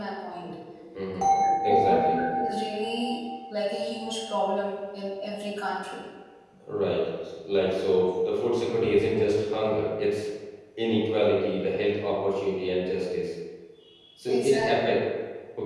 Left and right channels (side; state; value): both; identical; correlation 1.00